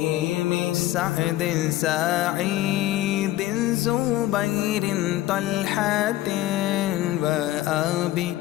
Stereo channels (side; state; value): right; quieter; 15.3 dB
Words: سعد سعيد زبير طلحة وأبي